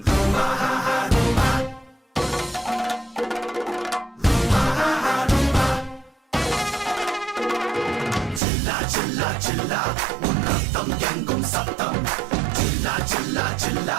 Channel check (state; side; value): drops out; left; at 8.4 s